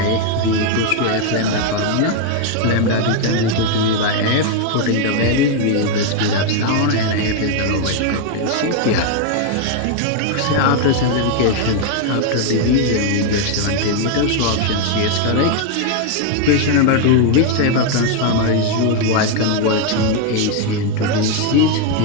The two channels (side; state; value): both; different; correlation 0.01